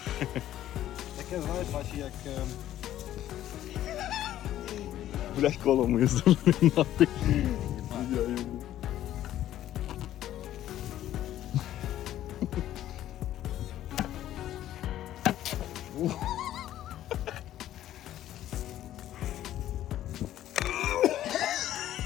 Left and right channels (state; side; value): quieter; right; 12.7 dB